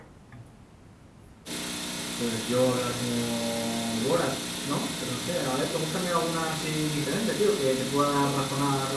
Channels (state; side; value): identical; both; correlation 1.00